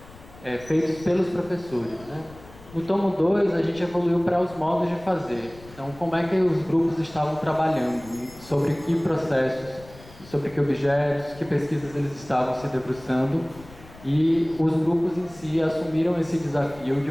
feitos pelos professores, né? No tomo 2, a gente evoluiu para os modos de fazer. Então, como é que os grupos estavam trabalhando, sobre que processos, sobre que objetos, que pesquisas eles estavam se debruçando, e os grupos em si assumiram esse desafio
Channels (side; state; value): left; noise; rumble, 21 dB below the sound